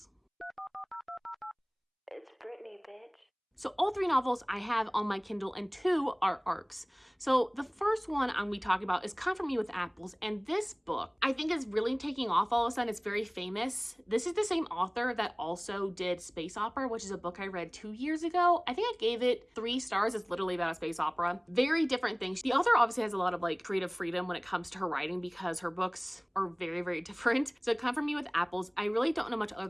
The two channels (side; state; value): both; identical; correlation 1.00